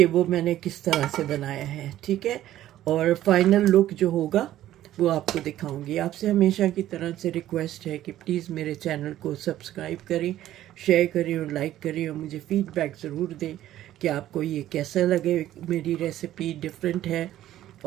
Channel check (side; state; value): left; quieter; 13.2 dB